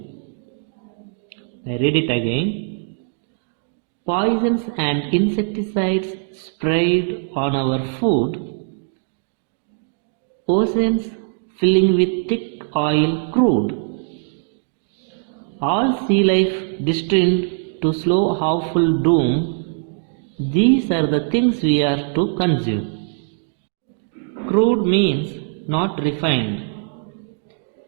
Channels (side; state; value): left; silent; digital silence